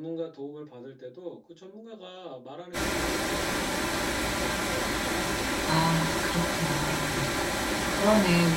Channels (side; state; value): both; identical; correlation 1.00